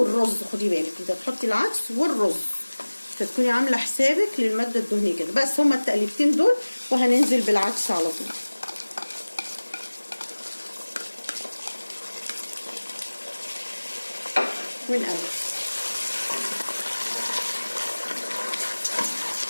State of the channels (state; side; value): inverted; both; correlation -1.00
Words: خدي بالك انت بتحطي العدس والرز، فتكوني عامله حسابك للماده الدهنيه كده. بس هما التقليبتين دول وهننزل بالعدس على طول. ونقلب،